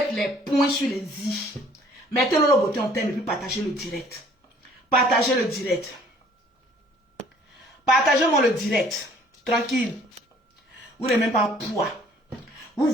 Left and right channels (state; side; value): normal; both; correlation 0.57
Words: les points sur les i. Mettez Lolo Beauté en thème et puis partagez le direct. Partagez le direct. Partagez-moi le direct. Tranquille. Vous n'avez même pas poids. Vous